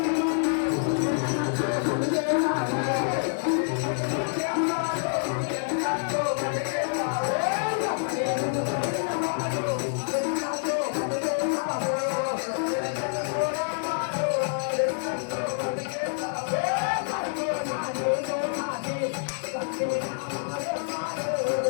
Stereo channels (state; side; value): silent; right; digital silence